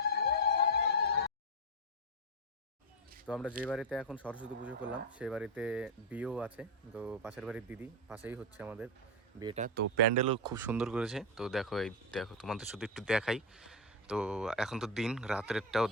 তো আমরা যে বাড়িতে এখন সরস্বতী পুজো করলাম সেই বাড়িতে বিয়েও আছে। তো পাশের বাড়ির দিদি, পাশেই হচ্ছে আমাদের বিয়েটা। তো প্যান্ডেলও খুব সুন্দর করেছে। তো দেখো, এই দেখো, তোমাদের শুধু একটু দেখাই। তো এখন তো দিন, রাত্রেরটাও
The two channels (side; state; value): both; normal; correlation 0.08